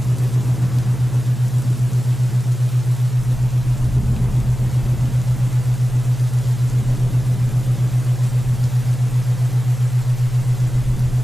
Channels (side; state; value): both; normal; correlation 0.94